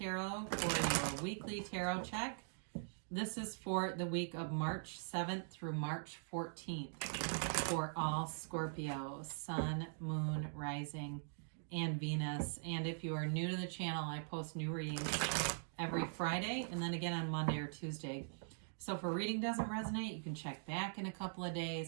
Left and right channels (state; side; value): silent; left; digital silence